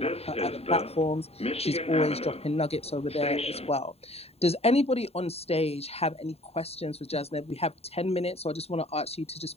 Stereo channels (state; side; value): late; right; 0.29 ms